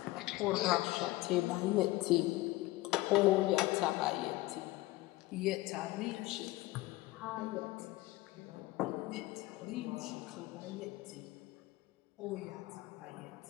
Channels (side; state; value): right; quieter; 19.3 dB